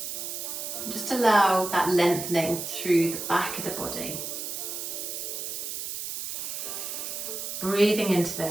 Just allow that lengthening through the back of the body. Breathing into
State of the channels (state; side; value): noise; right; hiss, 5 dB below the sound